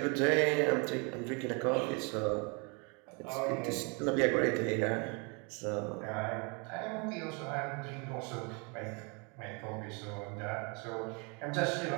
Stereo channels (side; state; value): left; quieter; 32.8 dB